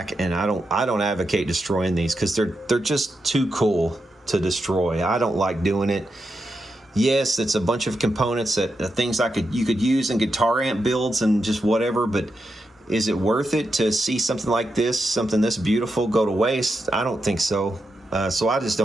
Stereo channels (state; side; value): normal; both; correlation 0.86